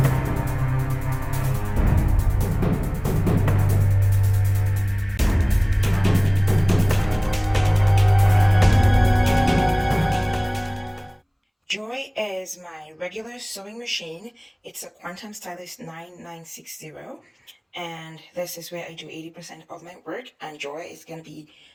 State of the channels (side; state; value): both; identical; correlation 1.00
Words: Joy is my regular sewing machine. It's a Quantum Stylist 9960, and this is where I do 80% of my work, and Joy is going to be